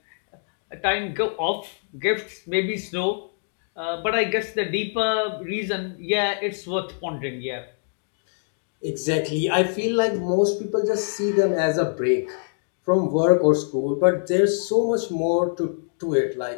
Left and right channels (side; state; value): right; silent; digital silence